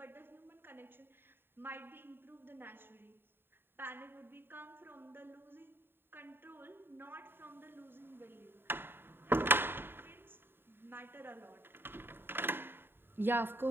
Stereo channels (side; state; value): left; late; 0.10 ms